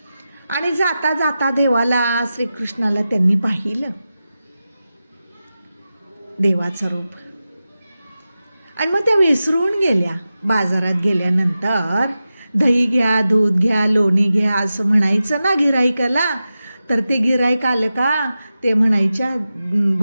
आणि जाता जाता देवाला श्रीकृष्णाला त्यांनी पाहिलं, देवाचं रूप. आणि मग त्या विसरून गेल्या. बाजारात गेल्यानंतर दही घ्या, दूध घ्या, लोणी घ्या असं म्हणायचं ना गिराईकाला, तर ते गिराईक आलं का ते म्हणायच्या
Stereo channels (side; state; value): both; inverted; correlation -0.93